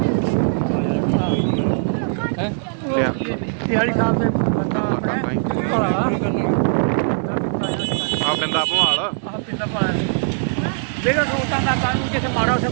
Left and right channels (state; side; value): silent; left; digital silence